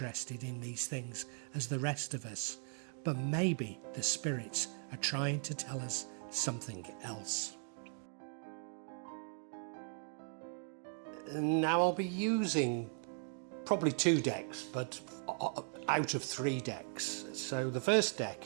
in these things as the rest of us. But maybe the spirits are trying to tell us something else. Now I'll be using probably 2 decks, but out of 3 decks. So the first deck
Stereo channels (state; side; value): silent; left; 52 dB below the other